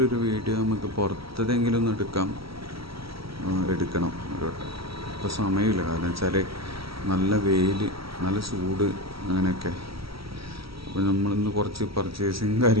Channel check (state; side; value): late; left; 0.75 ms